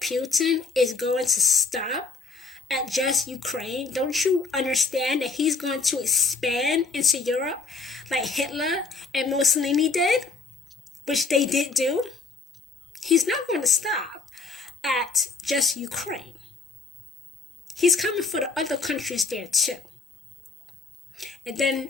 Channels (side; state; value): right; quieter; 4.2 dB